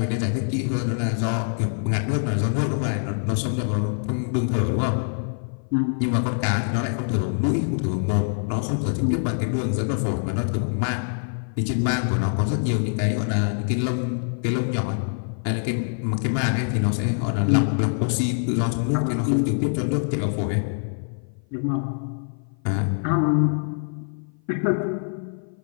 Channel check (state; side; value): silent; right; 55 dB below the other